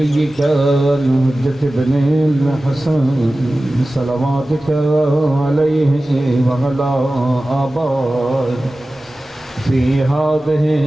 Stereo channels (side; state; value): both; normal; correlation 0.96